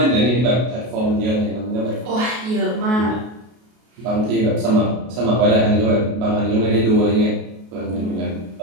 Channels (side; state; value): left; late; 33 ms